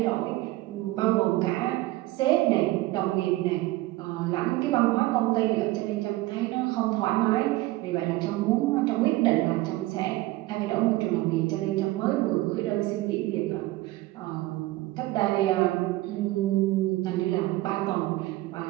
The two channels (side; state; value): left; quieter; 18.3 dB